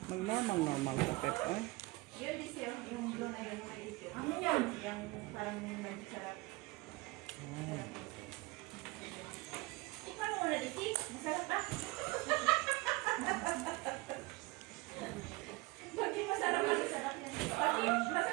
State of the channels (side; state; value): left; quieter; 22.5 dB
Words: Mag-normal ka, Pep. Ay. Yun din siya, yung blue na yun, yung maliit yun. Ano yan? Yung parang masarap. Tikman mo muna, Diti. Masarap ba? Pati masarap yan. Pati